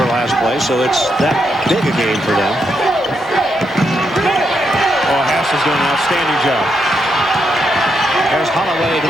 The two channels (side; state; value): both; normal; correlation 0.80